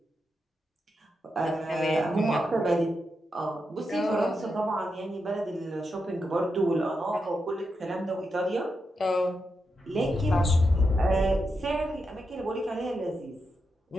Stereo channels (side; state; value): both; normal; correlation 0.86